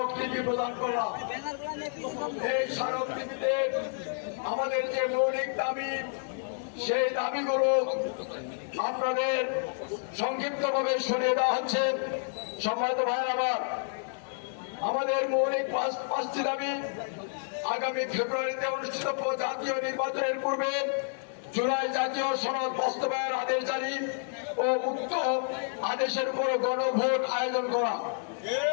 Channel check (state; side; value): silent; right; 58 dB below the other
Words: প্রদান করলাম। এই স্মারকলিপিতে আমাদের যে মৌলিক দাবি, সেই দাবিগুলো আপনাদের সংক্ষিপ্তভাবে শুনিয়ে দেওয়া হচ্ছে। সম্মানিত ভাইয়ের আমার, আমাদের মৌলিক 5টি দাবি আগামী ফেব্রুয়ারিতে অনুষ্ঠিত জাতীয় নির্বাচনের পূর্বে জুলাই জাতীয় সনদ বাস্তবায়ন আদেশ জারি ও উক্ত আদেশের উপর গণভোট আয়োজন করা,